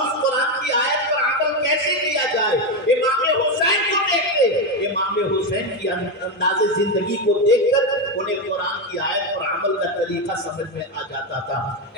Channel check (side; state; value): both; normal; correlation 0.10